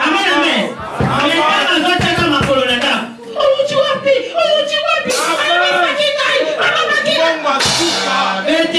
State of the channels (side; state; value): both; identical; correlation 1.00